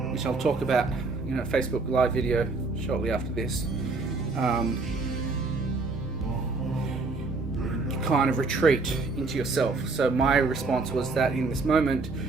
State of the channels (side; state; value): left; quieter; 3.7 dB